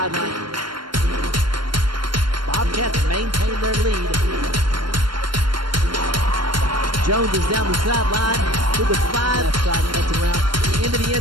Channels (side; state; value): left; late; 0.72 ms